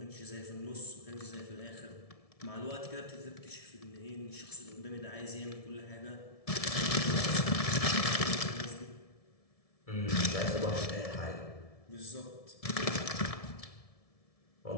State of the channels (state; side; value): late; right; 1.7 ms